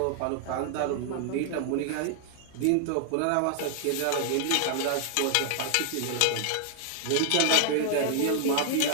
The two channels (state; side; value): different; both; correlation 0.00